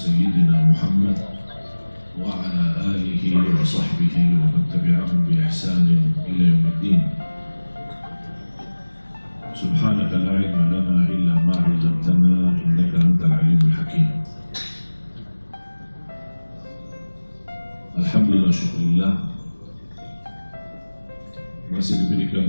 محمد وعلى آله وصحبه ومن تبعهم بإحسان إلى يوم الدين. سبحانك لا علم لنا إلا ما علمتنا إنك أنت العليم الحكيم. Alhamdulillah, syukurillah, masih diberikan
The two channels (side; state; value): both; inverted; correlation -1.00